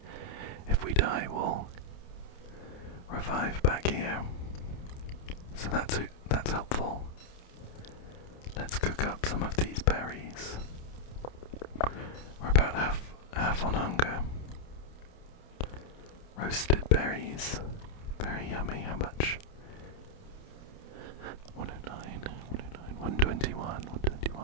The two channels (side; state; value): right; late; 29 ms